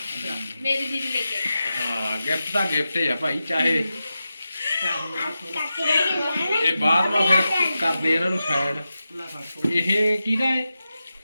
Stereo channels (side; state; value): both; inverted; correlation -0.91